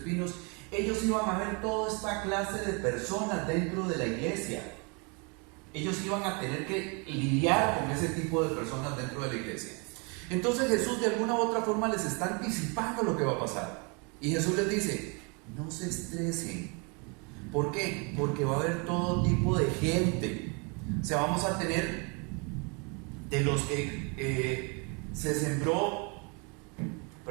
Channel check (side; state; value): left; quieter; 32.7 dB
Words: ellos iban a ver toda esta clase de personas dentro de la iglesia. Ellos iban a tener que lidiar con ese tipo de personas dentro de la iglesia. Entonces Jesús de alguna u otra forma les está anticipando lo que va a pasar. Y Jesús les dice, no se estresen. ¿Por qué? Porque va a haber todo tipo de gente. O sea, vamos a tener de los que se sembró,